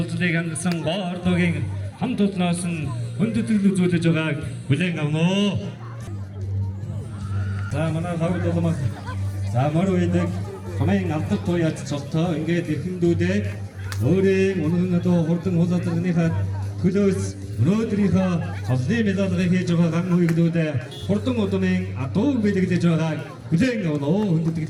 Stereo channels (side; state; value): both; identical; correlation 1.00